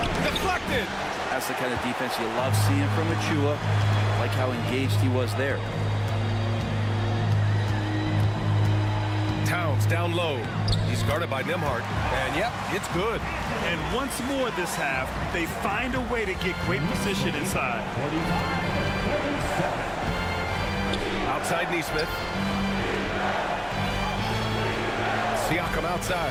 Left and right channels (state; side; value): identical; both; correlation 1.00